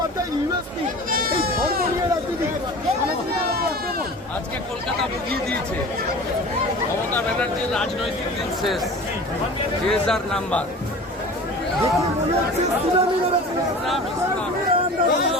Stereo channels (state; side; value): normal; both; correlation 0.38